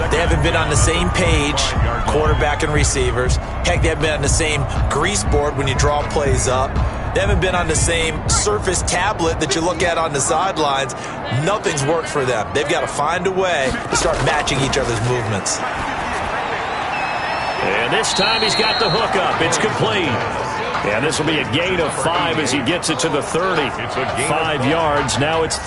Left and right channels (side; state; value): both; identical; correlation 1.00